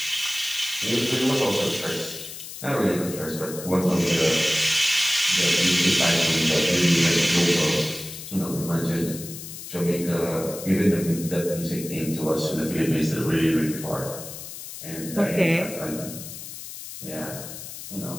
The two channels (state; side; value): noise; left; hiss, 11 dB below the sound